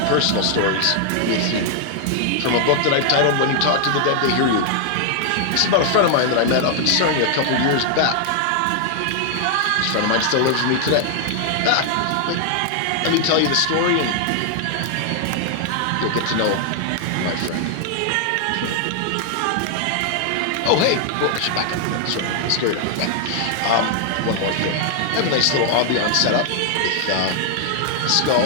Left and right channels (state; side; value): different; both; correlation 0.00